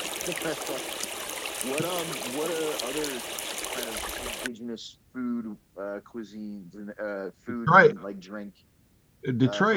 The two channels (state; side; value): identical; both; correlation 1.00